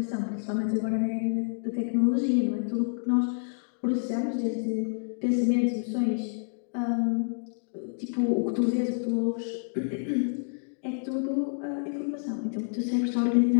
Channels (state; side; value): silent; right; digital silence